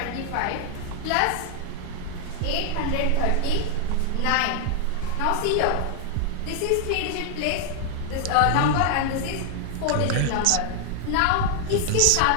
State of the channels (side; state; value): both; different; correlation 0.00